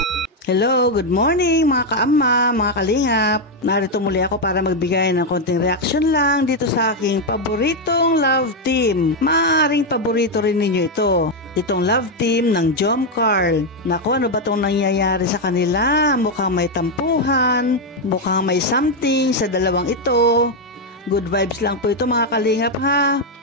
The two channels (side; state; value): both; normal; correlation 0.03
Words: Hello, good morning mga kaama, mga kalingap. Narito muli ako para magbigay ng konting reaction lang dito sa aking paboritong love team. Maaaring paborito rin ninyo ito. Itong love team ng Jom Carl. Naku, ano ba itong nangyayari sa kanila? Mukhang may tampuhan, mukhang may something sa dalawang ito. Good vibes lang po ito mga kalingap ha.